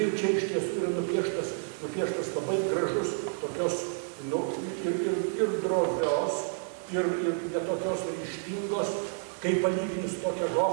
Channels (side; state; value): left; silent; digital silence